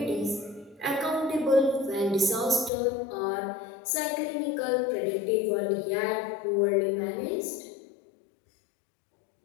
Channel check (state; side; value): drops out; right; at 2.7 s